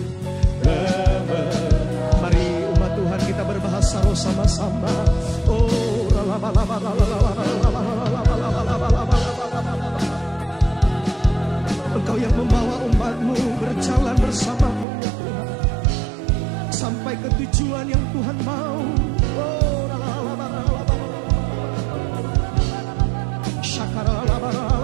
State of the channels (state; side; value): drops out; left; at 14.9 s